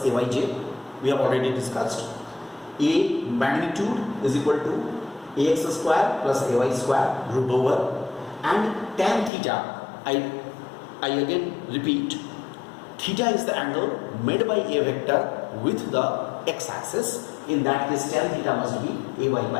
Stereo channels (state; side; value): drops out; right; at 9.3 s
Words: AYJ. We have already discussed. A magnitude is equal to AX square plus AY square root over, and tan theta, I again repeat, theta is the angle made by A vector with the x-axis. In that case, tan theta must be AY